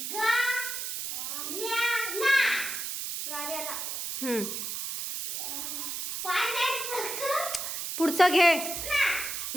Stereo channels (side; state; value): right; noise; hiss, 4 dB below the sound